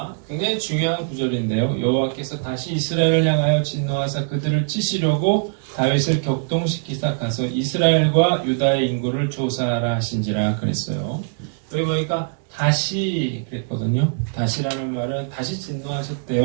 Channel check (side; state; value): left; silent; 64 dB below the other